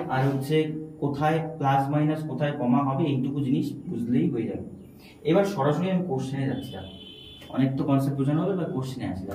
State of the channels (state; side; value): identical; both; correlation 1.00